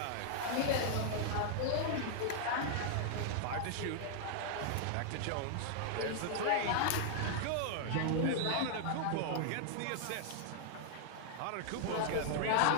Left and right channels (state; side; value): different; both; correlation -0.01